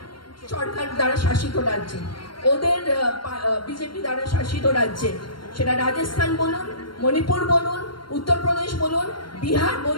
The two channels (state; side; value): late; right; 0.73 ms